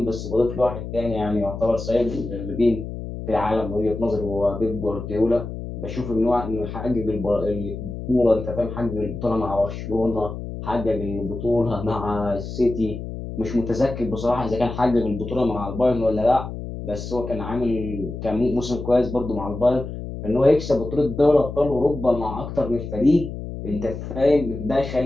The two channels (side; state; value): left; noise; hum, 8 dB below the sound